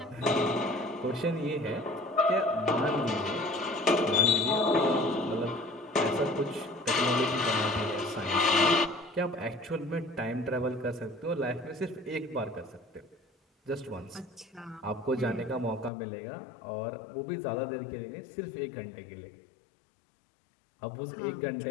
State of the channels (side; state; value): right; drops out; at 15.9 s